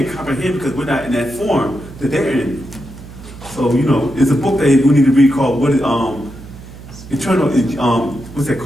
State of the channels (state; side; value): noise; right; hum, 16 dB below the sound